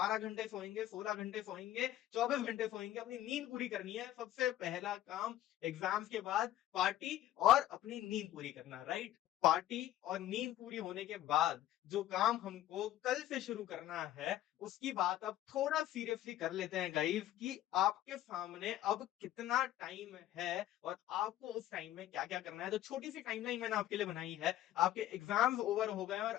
घंटे सोएंगे, 16 घंटे सोएंगे, 24 घंटे सोएंगे, अपनी नींद पूरी करनी है। सबसे पहला काम एग्जाम्स के बाद पार्टी और अपनी नींद पूरी करना, राइट? पार्टी और नींद पूरी होने के बाद जो काम हमको कल से शुरू करना है, उसकी बात अब थोड़ा सीरियसली कर लेते हैं गाइस, कि आपके सामने अब कितना टाइम है और आपको उस टाइम में क्या-क्या करना है। तो छोटी सी टाइमलाइन मैंने आपके लिए बनाई है। आपके एग्जाम्स ओवर हो गए हैं और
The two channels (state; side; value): quieter; right; 13.2 dB